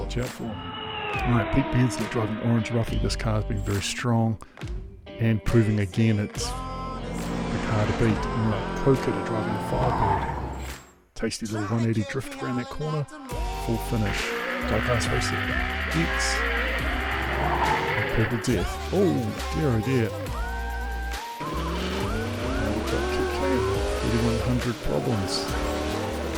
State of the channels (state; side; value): identical; both; correlation 1.00